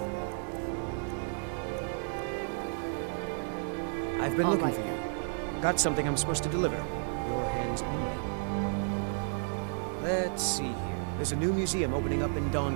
I've been looking right, for you. Got something I'm supposed to deliver. Your hands only. Let's see here. There's a new museum opening up in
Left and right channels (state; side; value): silent; left; 56 dB below the other